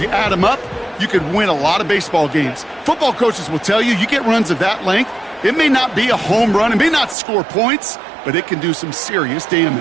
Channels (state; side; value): drops out; left; at 7.2 s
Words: you add them up, you could win a lot of baseball games. Football coaches will tell you get runs of that length. It may not be a home run. It may not score points, but it can do some serious